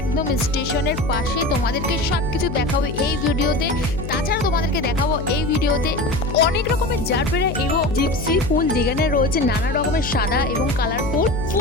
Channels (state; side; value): noise; left; hum, 7 dB below the sound